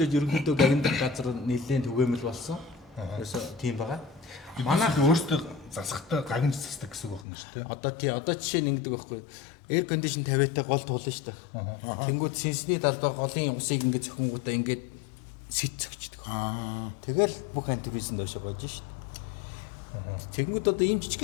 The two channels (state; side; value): drops out; right; at 7.2 s